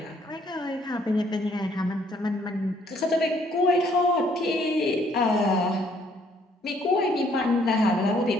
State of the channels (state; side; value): normal; both; correlation 0.65